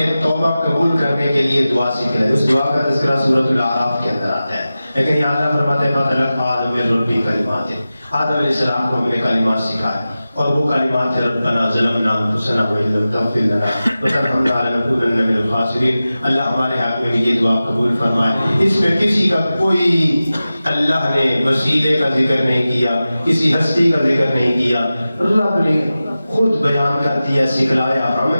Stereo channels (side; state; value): both; inverted; correlation -0.95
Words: توبہ قبول کرنے کے لیے دعا سکھلائی. اس دعا کا تذکرہ سورۃ الاعراف کے اندر آتا ہے, لیکن یہاں اللہ فرماتے ہیں فَتَلَقَّىٰ آدَمُ مِن رَّبِّهِ كَلِمَاتٍ. آدم علیہ السلام کو ہم نے کلمات سکھائے, اور وہ کلمات تھے ربنا ظلمنا انفسنا وان لم تغفر لنا وترحمنا لنکونن من الخاسرین. اللہ ہمارے حق میں بھی یہ دعا قبول فرمائے. اس میں کسی کا کوئی اللہ نے وسیلے کا ذکر نہیں کیا, کسی ہستی کا ذکر نہیں کیا. رب نے خود بیان کر دیا, سکھلایا ہم